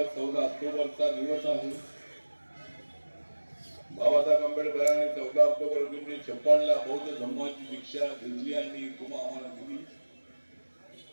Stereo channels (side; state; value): both; inverted; correlation -1.00